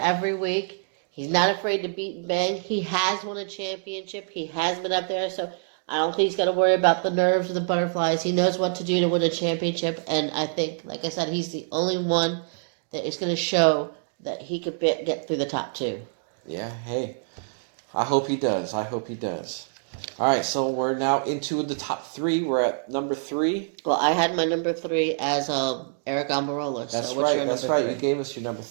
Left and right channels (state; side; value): silent; left; digital silence